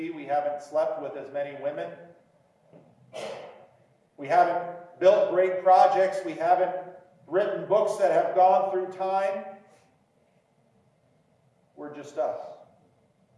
We haven't slept with as many women. We haven't built great projects. We haven't written books that have gone through time. We're just us.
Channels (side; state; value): both; identical; correlation 1.00